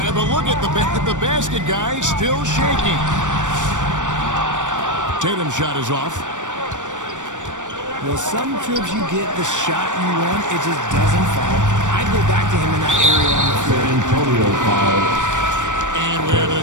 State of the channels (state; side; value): late; left; 0.86 ms